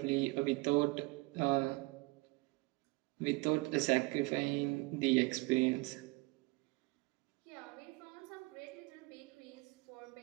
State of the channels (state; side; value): quieter; left; 24.9 dB